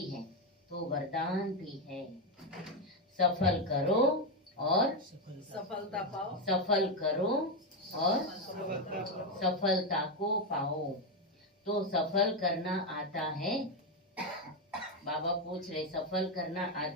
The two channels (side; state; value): both; normal; correlation 0.07